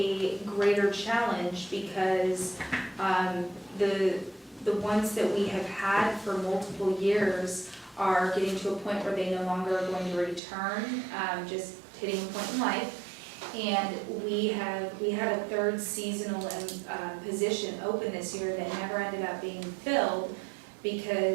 greater challenge because the ones that we have had for multiple years are getting to a point where they no longer are going to return, just hitting a point in life. And we had a third seasonal position open this year that never ended up being filled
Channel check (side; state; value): left; drops out; at 10.4 s